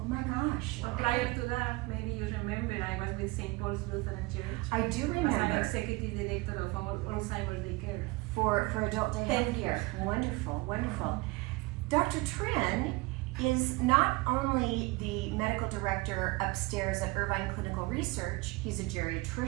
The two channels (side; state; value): left; quieter; 23.0 dB